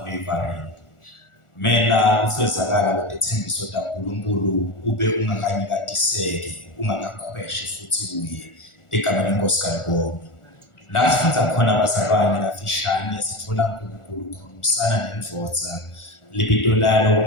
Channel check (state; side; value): late; right; 1.4 ms